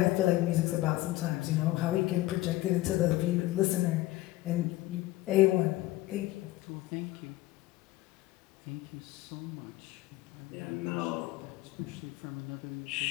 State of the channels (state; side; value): quieter; right; 17.6 dB